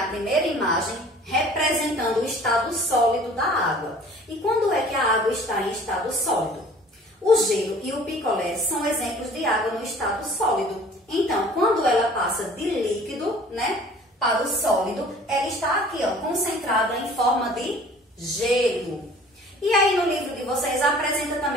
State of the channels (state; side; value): normal; both; correlation 0.49